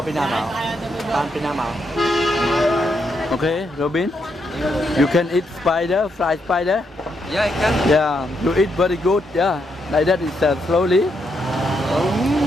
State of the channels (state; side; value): normal; both; correlation 0.79